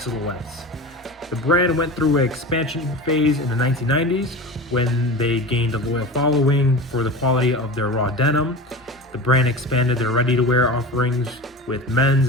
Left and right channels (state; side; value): normal; both; correlation 0.30